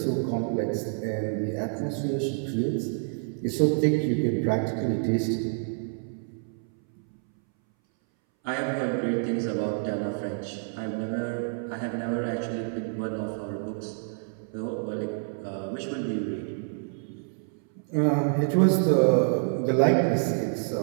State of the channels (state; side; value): silent; left; 60 dB below the other